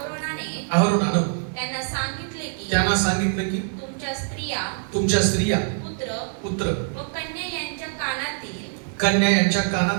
अहरोनानं त्यांना सांगितलं की तुमच्या स्त्रिया पुत्र व कन्या यांच्या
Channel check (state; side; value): silent; left; digital silence